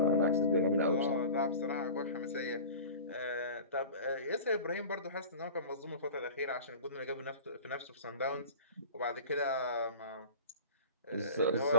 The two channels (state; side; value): inverted; both; correlation -0.37